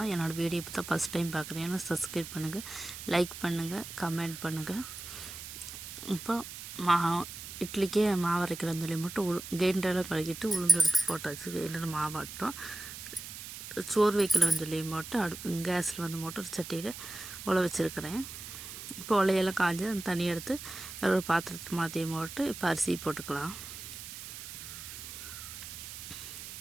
என்னோடய வீடியோ இப்போ தான் ஃபஸ்ட் டைம் பார்க்குறேன்னா சப்ஸ்கிரைப் பண்ணுங்கள், லைக் பண்ணுங்கள், கமெண்ட் பண்ணுங்கள். இப்போ இட்லிக்கே மாவு அரைக்கலாம்னு சொல்லி மட்டும் கிரைண்டரெல்லாம் கழுகிட்டு உளுந்து எடுத்து போட்டாச்சு. கிரைண்டர் மாவாட்டோம். சோறு வைக்கலாம்னு சொல்லி மட்டும் கேஸில் வந்து ஒரு சட்டியில் உழ வச்சுருக்கிறேன். இப்போ உலையெல்லாம் காய்ஞ்சி அந்த தண்ணி எடுத்து வேறு ஒரு பாத்திரத்தை மாற்றி போட்டு இப்போ அரிசி போட்டுக்கலாம்.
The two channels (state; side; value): noise; right; hiss, 10 dB below the sound